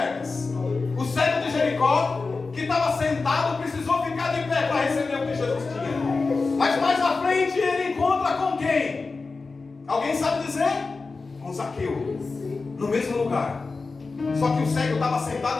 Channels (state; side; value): quieter; right; 4.1 dB